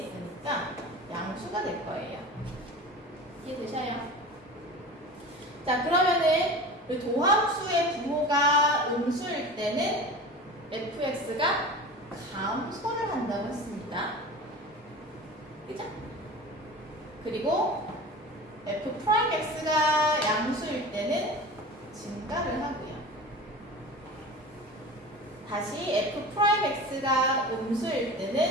양수가 될 거예요. 이해되셔요? 자, 그러면은 도함수의 부호가 음수일 때는 fx가 감소를 한다고 했습니다. 그죠? 그리고 f'x가 양수일 때는 증가를 하고요. 다시 f'x가 음수일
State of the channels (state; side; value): normal; both; correlation 0.34